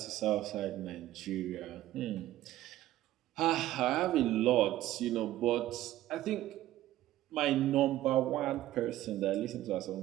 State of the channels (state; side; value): quieter; left; 14.5 dB